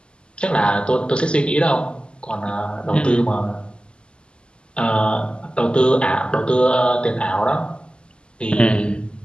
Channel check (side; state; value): right; late; 0.051 ms